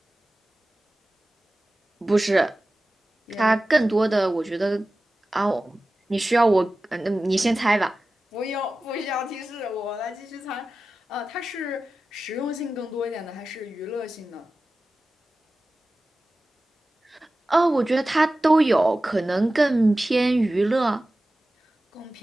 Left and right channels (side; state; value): both; normal; correlation 0.95